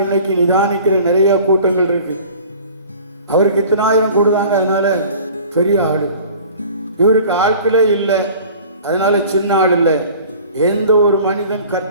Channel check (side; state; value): both; inverted; correlation -0.45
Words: இன்னைக்கு நிதானிக்கிற நிறைய கூட்டங்கள் இருக்கு. அவருக்கு இத்தனை ஆயிரம் கூடுதாங்க, அதனால பெரிய ஆளு. இவருக்கு ஆட்களே இல்லை, அதனால சின்ன ஆள் இல்லை. எந்த ஒரு மனிதன்